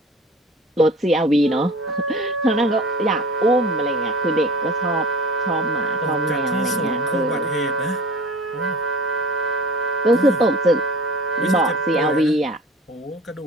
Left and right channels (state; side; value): normal; both; correlation 0.41